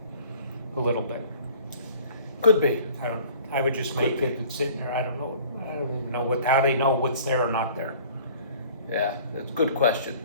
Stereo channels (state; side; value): inverted; both; correlation -0.49